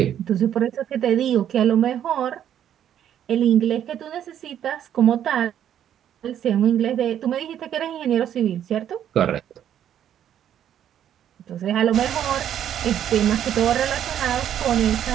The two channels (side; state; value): left; quieter; 10.2 dB